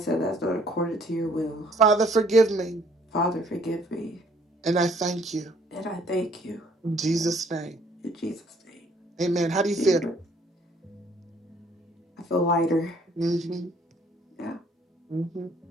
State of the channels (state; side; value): normal; both; correlation 0.61